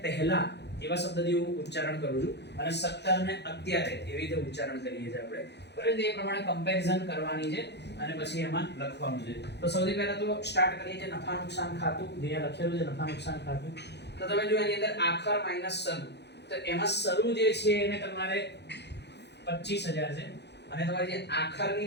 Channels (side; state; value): right; late; 0.50 ms